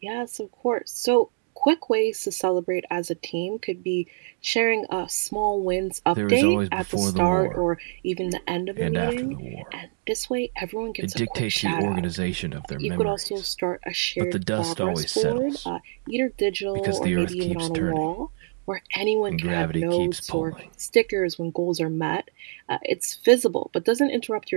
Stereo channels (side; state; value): left; silent; digital silence